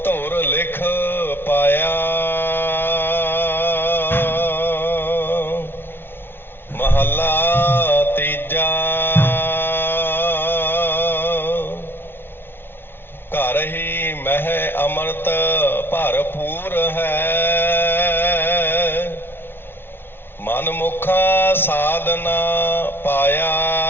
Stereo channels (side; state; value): right; late; 0.11 ms